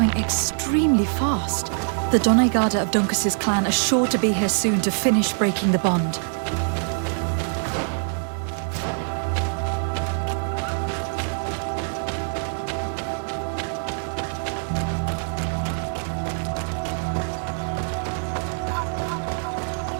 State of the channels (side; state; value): left; silent; 62 dB below the other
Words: extremely fast. The Doneigada of Dunkus's clan are sure to be here soon to finish breaking the bond.